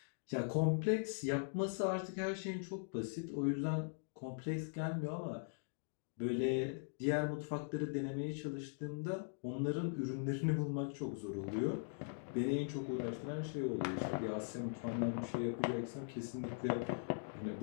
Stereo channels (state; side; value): silent; right; digital silence